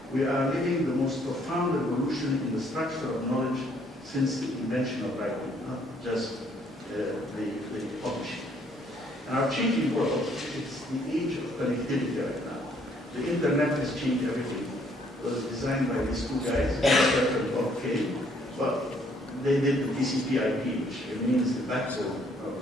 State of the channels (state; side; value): normal; both; correlation 0.65